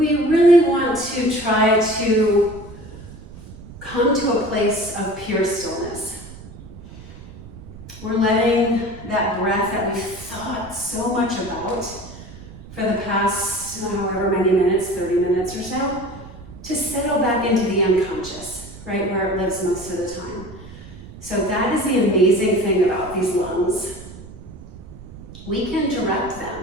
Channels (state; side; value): noise; right; rumble, 16 dB below the sound